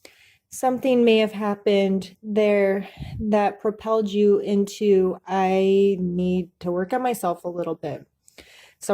something may have happened there that propelled you into, I need to work on myself a little bit.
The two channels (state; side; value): identical; both; correlation 1.00